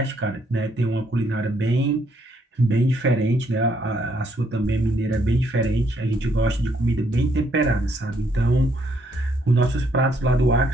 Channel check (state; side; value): normal; both; correlation 0.71